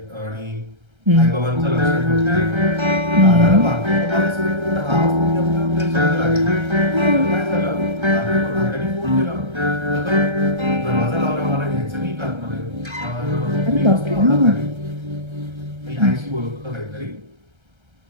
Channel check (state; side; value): late; left; 1.3 ms